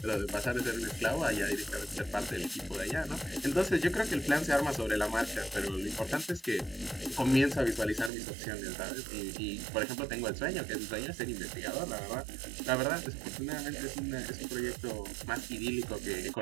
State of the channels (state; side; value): drops out; left; at 8.1 s